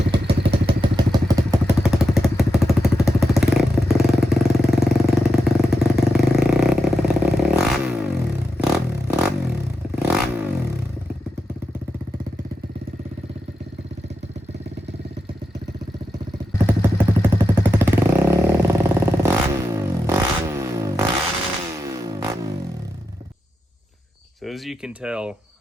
So as you can tell,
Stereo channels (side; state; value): both; normal; correlation 0.88